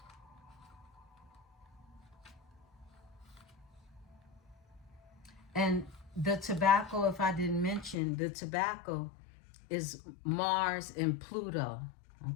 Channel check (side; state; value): right; drops out; at 8.0 s